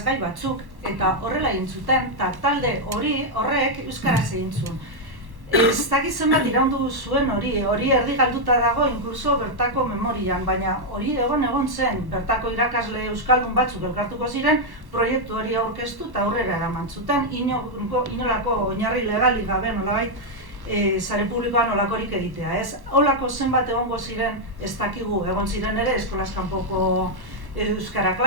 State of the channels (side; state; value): left; late; 1.1 ms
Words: batzuk, eta horrela egin zuten, eta talde horrek euskaraz egin zuen. Ez dakit zenbat iraundu zuen hori erdi galduta dago inkluso bertako memorian, baina hori egon zen, bertako irakasle euskaldun batzuk elkartuko ziren, proiektu hori aurkeztu eta aurrera eraman zuten, inolako oinarri legali gabe nolabait sare publikoan olakorik egitea, ez? Olako zenbat egongo ziren, ez dakigu, egon ziren ere eskolaz kanpoko euskara